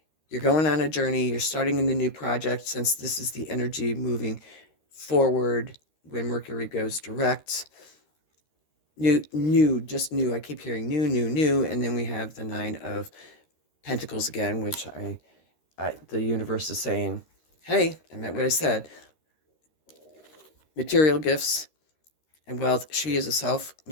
You're going on a journey. You're starting in a new project, since this is the energy moving forward when Mercury goes direct. Just new. I keep hearing new. And then we have the Nine of Pentacles again, which the universe is saying, hey, I meant what I said. Material gifts and wealth. She is a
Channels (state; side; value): late; right; 13 ms